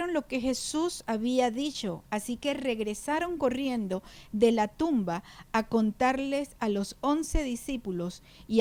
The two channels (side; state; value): both; identical; correlation 1.00